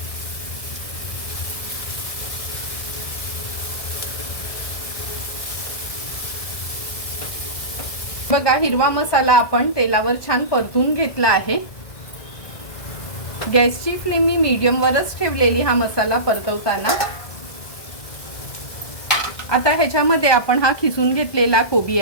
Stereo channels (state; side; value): late; right; 1.7 ms